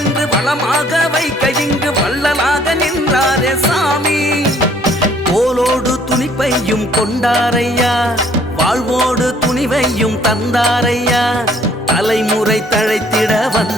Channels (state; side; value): normal; both; correlation 0.61